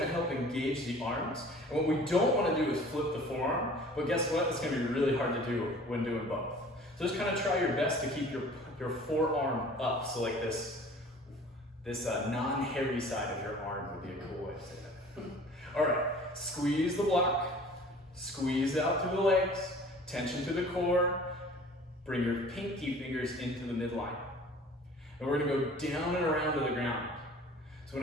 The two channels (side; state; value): both; normal; correlation 0.47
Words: to help engage the arms. And what we don't want to do is flip the forearm, but guess what? It's going to be really hard to do when doing both. So just kind of try your best to keep your forearm up. So like this non-hairy side of your arm would be a cool way to say that. All right, squeeze the block, squeeze out through the legs, tension through the core, bring your pinky fingers into the midline. And we're going to go down and around to the ground. So I'm